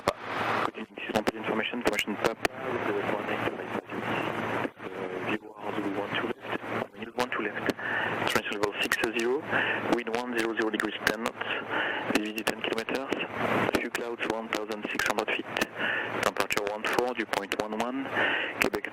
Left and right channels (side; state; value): both; identical; correlation 1.00